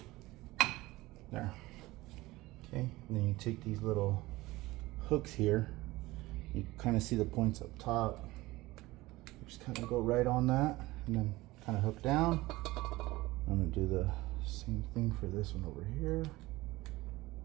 There. Okay, and then you take these little hooks here. You kind of see the points up top. Just kind of go right on that and then kind of hook down. I'm gonna do the same thing for this one over here.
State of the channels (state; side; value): quieter; left; 19.4 dB